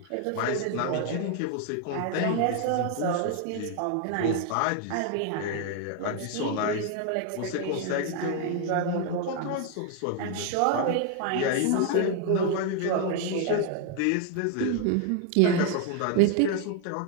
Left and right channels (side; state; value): both; different; correlation 0.00